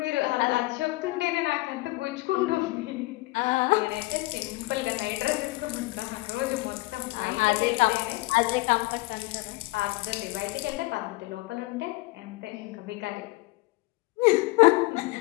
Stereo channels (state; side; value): quieter; right; 21.6 dB